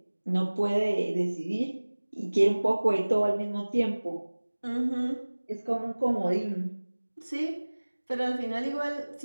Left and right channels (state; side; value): inverted; both; correlation -1.00